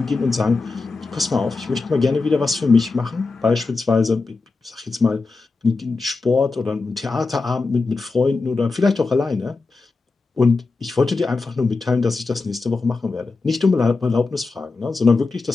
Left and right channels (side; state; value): right; quieter; 3.9 dB